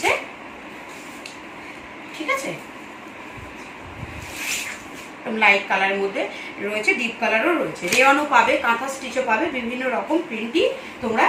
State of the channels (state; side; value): identical; both; correlation 1.00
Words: ঠিক আছে, লাইট কালারের মধ্যে রয়েছে, ডিপ কালারও রয়েছে, রেওয়ানও পাবে, কাঁথা স্টিচও পাবে, বিভিন্ন রকম প্রিন্টই তোমরা